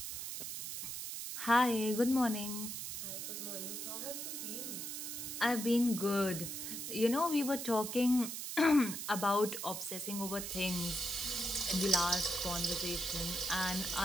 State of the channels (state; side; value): noise; right; hiss, 5 dB below the sound